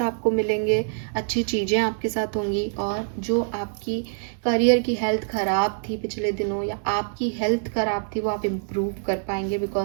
आपको मिलेंगे. अच्छी चीज़ें आपके साथ होंगी. और जो आपकी करियर की हेल्थ ख़राब थी पिछले दिनों, या आपकी हेल्थ ख़राब थी, वो आप इम्प्रूव कर पाएंगे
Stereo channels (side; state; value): left; silent; digital silence